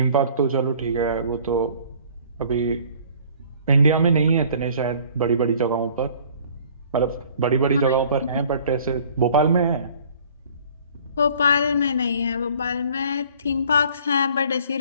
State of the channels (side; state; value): both; inverted; correlation -0.53